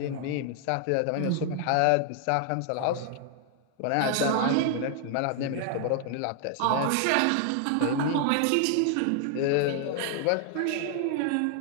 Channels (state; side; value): different; both; correlation 0.00